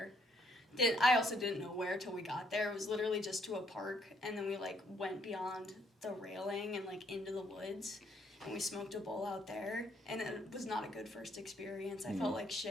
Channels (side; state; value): both; normal; correlation 0.69